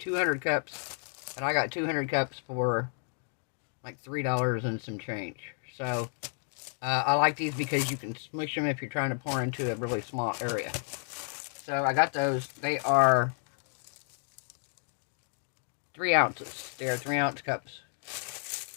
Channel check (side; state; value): right; silent; 57 dB below the other